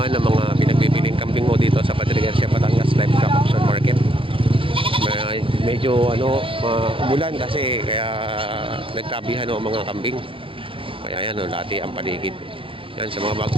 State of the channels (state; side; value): late; left; 0.25 ms